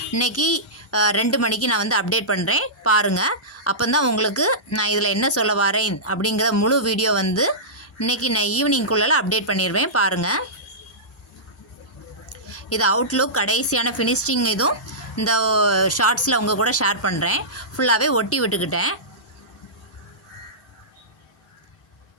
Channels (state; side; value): normal; both; correlation -0.17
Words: இன்றைக்கி 2 மணிக்கு நான் வந்து அப்டேட் பண்ணுறேன், பாருங்கள். அப்போ தான் உங்களுக்கு நான் இதில் என்ன சொல்ல வரேன் அப்படிங்கிற முழு வீடியோ வந்து இன்றைக்கி நான் ஈவினிங்குள்ளே அப்டேட் பண்ணிடுவேன், பாருங்கள். இது அவுட்லுக் கடைசியான ஃபினிஷிங் இதுவும் இந்த ஷார்ட்ஸில் உங்கள் கூட ஷேர் பண்ணுறேன். ஃபுல்லாகவே ஒட்டி விட்டுக்கிட்டேன்.